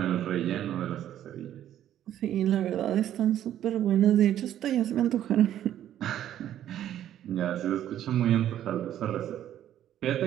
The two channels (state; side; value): quieter; left; 11.4 dB